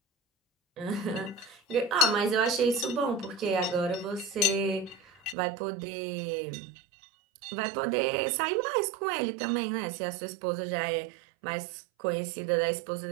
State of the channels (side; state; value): left; drops out; at 5.4 s